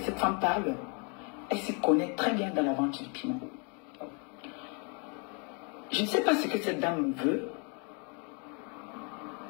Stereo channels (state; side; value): quieter; right; 36.2 dB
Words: cette femme parle, elle s'y connaît très bien dans la vente du piment. Je ne sais pas ce que cette dame me veut.